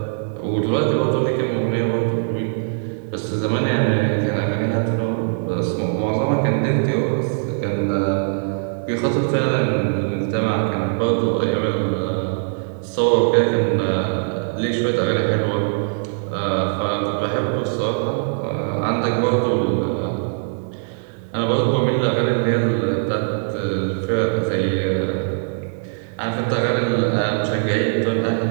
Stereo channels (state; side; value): silent; left; 64 dB below the other